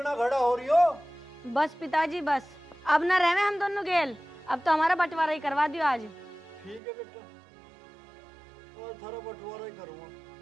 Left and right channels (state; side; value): drops out; left; at 6.8 s